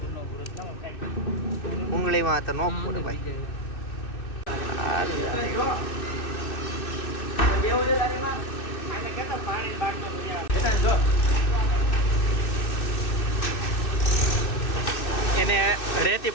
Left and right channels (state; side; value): late; right; 2.6 ms